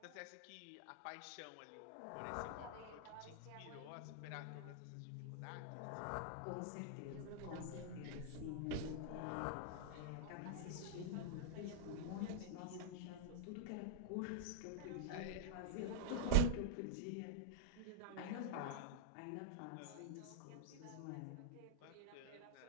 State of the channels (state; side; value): different; both; correlation -0.01